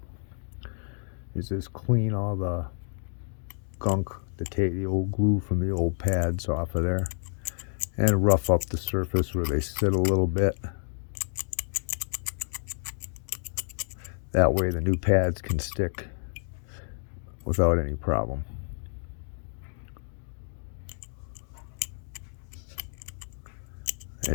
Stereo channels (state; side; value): silent; right; digital silence